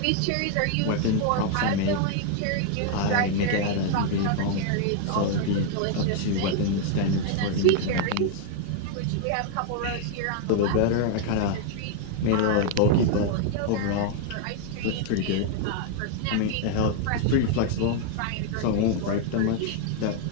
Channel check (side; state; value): both; different; correlation 0.00